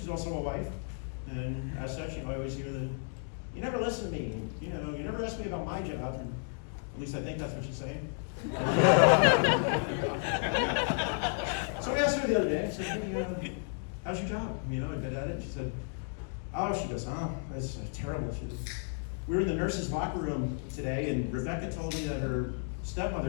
also a wife. And as such, I always hear that, "You never listen to me. You never ask me about my job." And at least I think that's what she's saying. So I asked her the other day, I said, "Hey, how's your job? I get at it." She said, she goes, that's terrible. She said, "We were in the nurses' locker room today, and Rebecca told me that her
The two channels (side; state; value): right; silent; 56 dB below the other